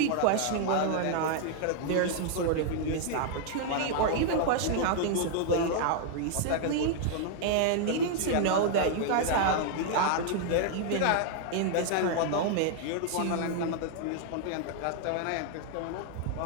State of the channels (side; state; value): both; different; correlation 0.00